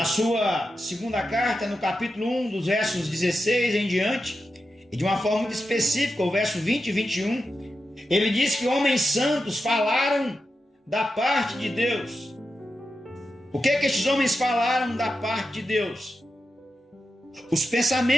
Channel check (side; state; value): both; normal; correlation 0.89